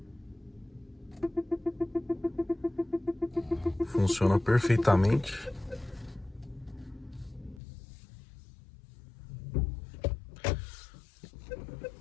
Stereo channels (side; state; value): right; drops out; at 7.6 s